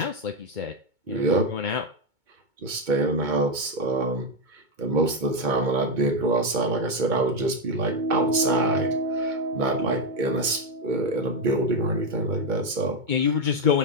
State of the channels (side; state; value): left; late; 2.2 ms